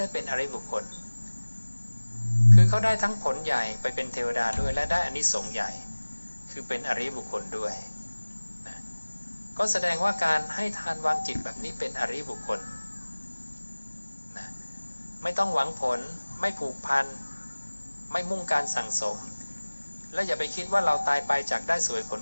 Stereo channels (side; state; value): both; inverted; correlation -1.00